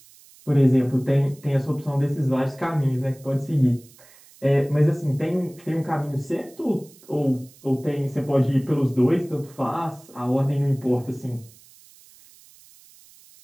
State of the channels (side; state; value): right; noise; hiss, 25 dB below the sound